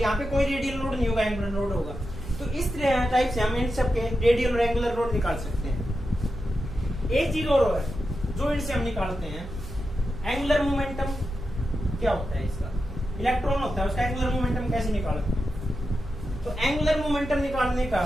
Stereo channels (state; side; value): noise; right; hum, 13 dB below the sound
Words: पे कोई रेडियल नोड नहीं होगा, एंगुलर नोड होगा। तो इस तरह टाइप से हम इन सबके रेडियल और एंगुलर नोड निकाल सकते हैं। एक चीज और है जो इनसे हम निकालते हैं, एंगुलर मोमेंटम क्या होता है इसका, इलेक्ट्रॉन होता है, उसका एंगुलर मोमेंटम कैसे निकालते हैं। तो एंगुलर मोमेंटम निकालने का